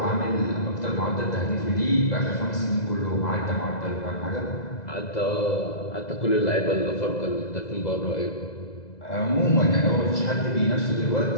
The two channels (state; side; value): late; right; 2.0 ms